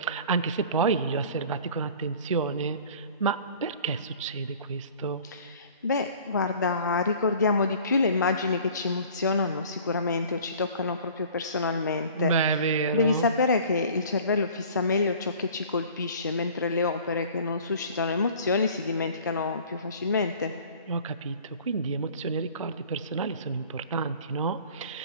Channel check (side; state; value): both; inverted; correlation -0.47